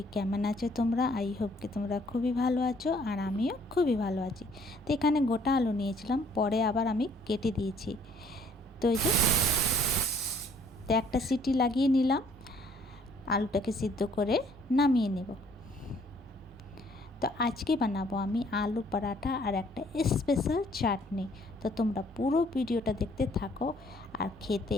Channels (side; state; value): both; normal; correlation 0.61